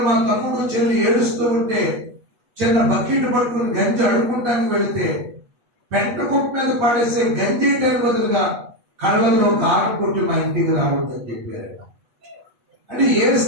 మా తమ్ముడు చెల్లి ఏడుస్తూ ఉంటే చిన్న బకెట్ పట్టుకుని గంజి అడుక్కుంటానికి వెళితే పెంట కుప్ప మీద పడేసే గంజి వేయడానికి బదులుగా కళ్ళల్లో కారం కొట్టి మా ఇంటికి రావద్దని చెప్పారు. అంటే ఏ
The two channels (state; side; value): late; left; 8.4 ms